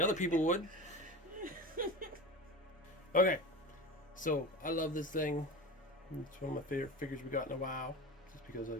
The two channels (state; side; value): normal; both; correlation 0.30